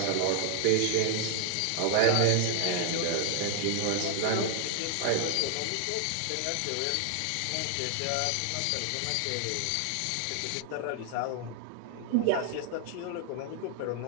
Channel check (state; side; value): different; both; correlation 0.00